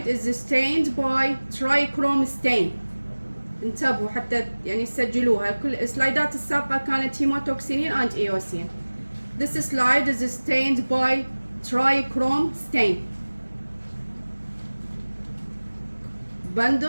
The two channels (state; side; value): inverted; both; correlation -1.00